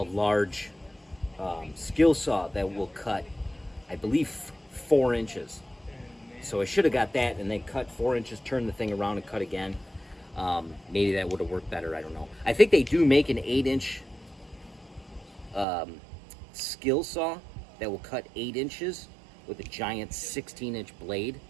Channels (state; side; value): drops out; left; at 15.7 s